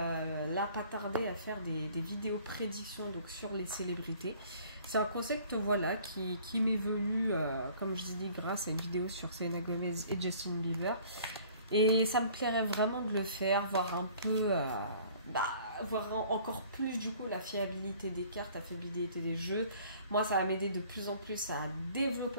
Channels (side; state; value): both; inverted; correlation -0.53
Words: là pas tarder à faire des vidéos prédictions donc, sur les célébrités. C'est un concept voilà, qui m'est venu, comme je dis, grâce à une vidéo sur Selena Gomez et Justin Bieber. Et ça me plairait vraiment de le faire, voir un peu, voir encore plus du coup la fiabilité des cartes, la fiabilité des jeux. Moi, ça va m'aider de plus en plus à